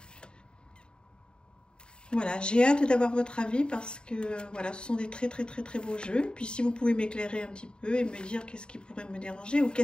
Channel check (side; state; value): right; late; 0.050 ms